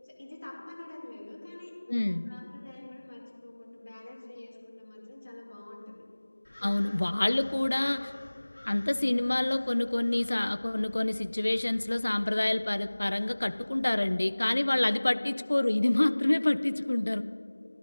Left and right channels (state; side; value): inverted; both; correlation -1.00